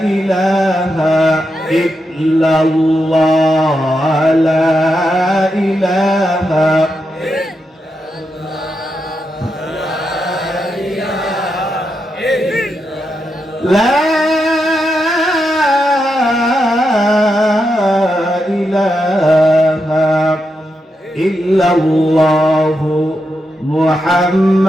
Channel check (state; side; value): normal; both; correlation 0.85